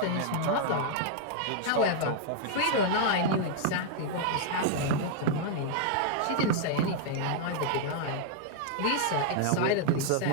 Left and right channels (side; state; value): both; different; correlation -0.01